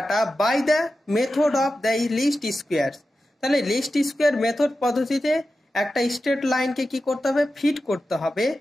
by the method of the least squares. তাহলে লিস্ট স্কোয়ার মেথড পদ্ধতিতে একটা স্ট্রেট লাইনকে কি করতে হবে, ফিট করতে হবে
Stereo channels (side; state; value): both; normal; correlation 0.92